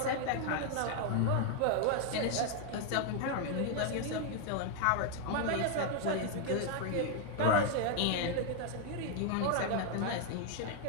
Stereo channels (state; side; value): different; both; correlation 0.00